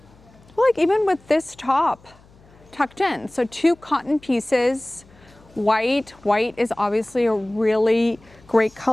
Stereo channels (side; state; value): left; noise; hum, 27 dB below the sound